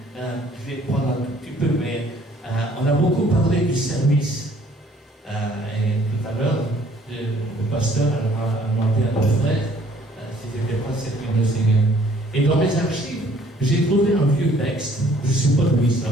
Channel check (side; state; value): both; normal; correlation 0.59